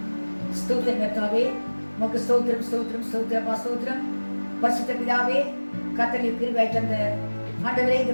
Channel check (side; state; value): both; inverted; correlation -1.00